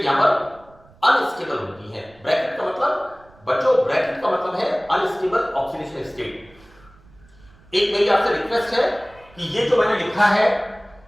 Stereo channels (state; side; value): noise; right; rumble, 27 dB below the sound